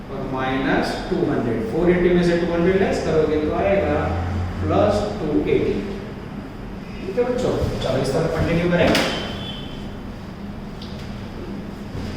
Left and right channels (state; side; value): identical; both; correlation 1.00